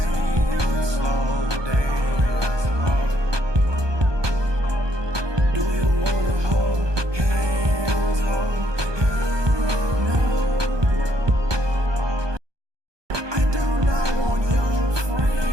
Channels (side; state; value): left; late; 1.2 ms